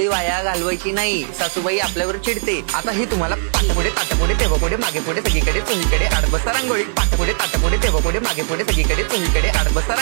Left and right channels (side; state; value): left; silent; 59 dB below the other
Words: वाया घालवायची नाही, सासूबाई आपल्यावर चिडते। आता ही तुम्हाला पाठपुढे ताटपुढे तेव्हापुढे मागे पुढे सगळीकडे चोहीकडे आडबस्ता रांगोळी, पाठपुढे ताटपुढे तेव्हापुढे मागे पुढे सगळीकडे चोहीकडे आडबस्ता